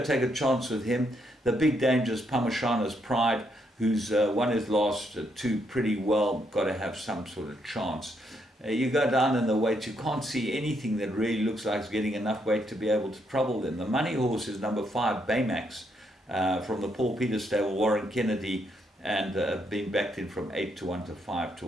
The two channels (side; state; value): both; normal; correlation 0.76